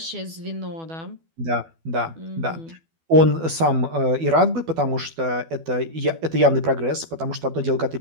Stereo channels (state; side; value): late; left; 12 ms